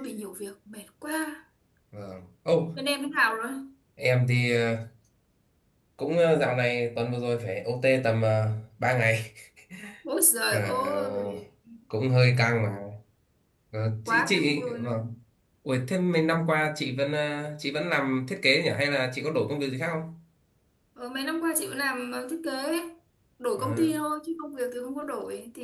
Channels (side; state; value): both; identical; correlation 1.00